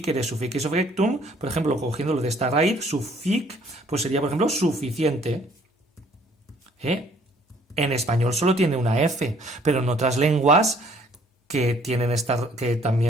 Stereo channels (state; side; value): normal; both; correlation 0.60